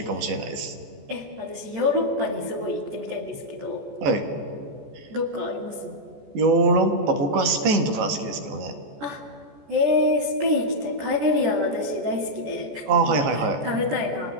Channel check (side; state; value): left; late; 14 ms